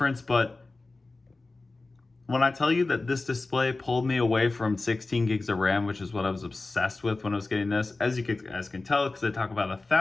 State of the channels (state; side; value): quieter; right; 3.4 dB